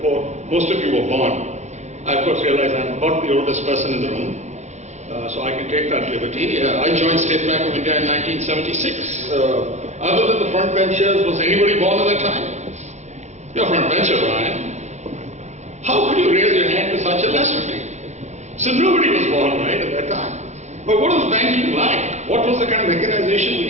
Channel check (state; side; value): late; left; 0.33 ms